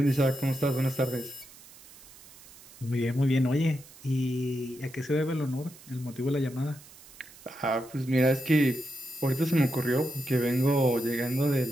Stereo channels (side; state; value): right; noise; hiss, 21 dB below the sound